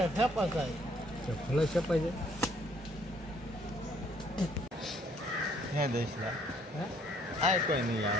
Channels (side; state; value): both; normal; correlation 0.63